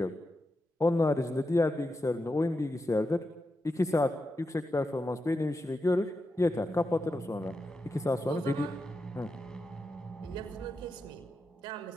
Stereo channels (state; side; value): normal; both; correlation 0.88